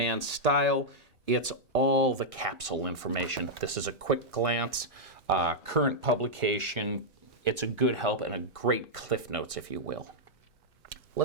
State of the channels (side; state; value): both; normal; correlation -0.06